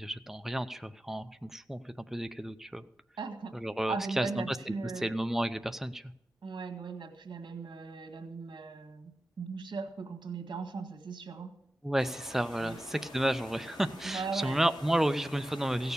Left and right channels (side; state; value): both; normal; correlation 0.93